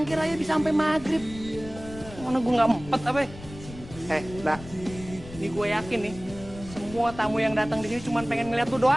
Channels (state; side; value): noise; left; rumble, 15 dB below the sound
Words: aja bisa sampai maghrib. Mana gue nggak empet apa? Nah, ini gue yakin nih. Semua tamu yang datang di sini cuma pengen ngeliat lu